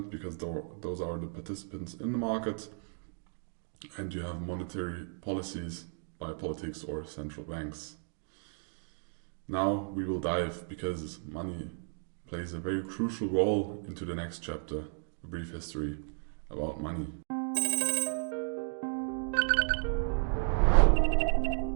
because those are the participants in the market, and you have monetary policies by politics or central banks. Now we will dive, because money plays a very crucial role, into the next chapter, a brief history about money.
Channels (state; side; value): silent; left; digital silence